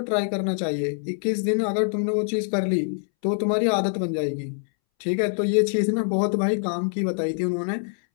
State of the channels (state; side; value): silent; right; 62 dB below the other